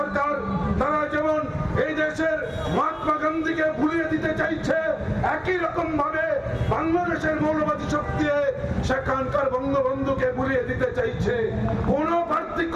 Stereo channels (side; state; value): both; identical; correlation 1.00